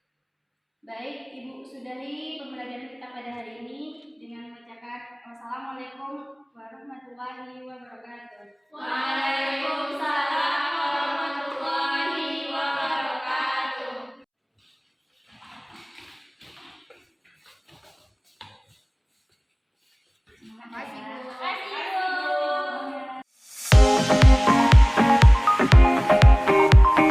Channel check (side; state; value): both; identical; correlation 1.00